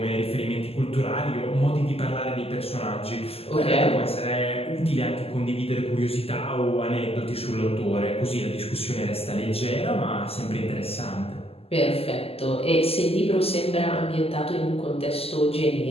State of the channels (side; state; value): right; late; 0.29 ms